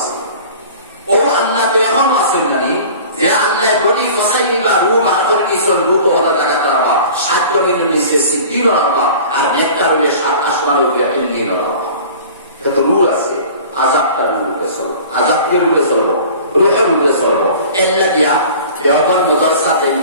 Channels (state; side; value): inverted; both; correlation -0.42